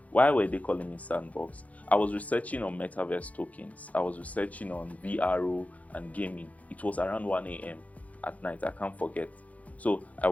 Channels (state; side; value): late; right; 0.069 ms